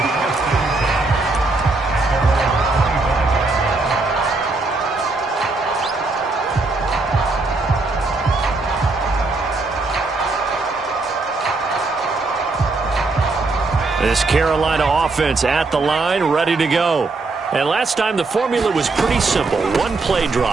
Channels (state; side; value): quieter; left; 3.5 dB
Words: This Carolina offense at the line, ready to go. And last time the formula was pretty simple. One play